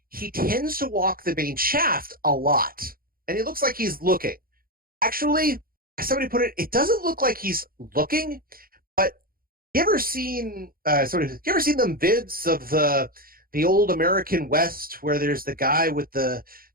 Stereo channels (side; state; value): left; late; 0.42 ms